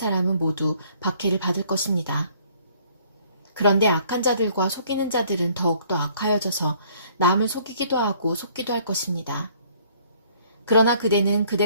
모두 박해를 받을 것입니다. 그런데 악한 자들과 속이는 자들은 더욱더 악하여져서 남을 속이기도 하고 속기도 할 것입니다. 그러나 그대는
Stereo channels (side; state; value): both; inverted; correlation -0.59